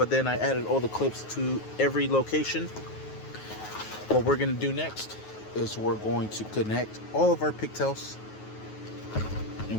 then I added all the clips to every location. What we're going to do next is we're going to connect all of our pigtails, and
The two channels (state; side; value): late; right; 9.4 ms